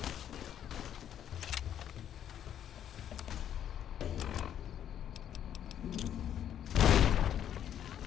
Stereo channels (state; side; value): quieter; right; 10.0 dB